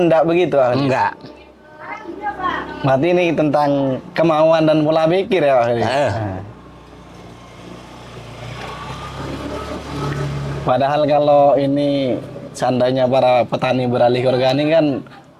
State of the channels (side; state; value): both; identical; correlation 1.00